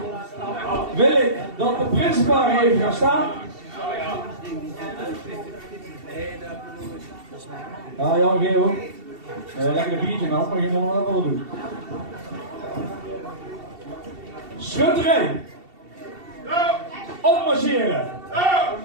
wil ik dat de principaal even gaan staan. Ja, Jan Geel. Lekker een biertje nou, maar je moet nog wel doen. Schutterij. Opmarcheren.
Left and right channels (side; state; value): left; late; 2.7 ms